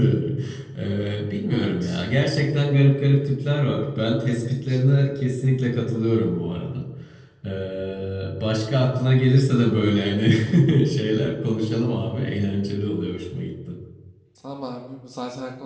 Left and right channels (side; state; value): both; identical; correlation 1.00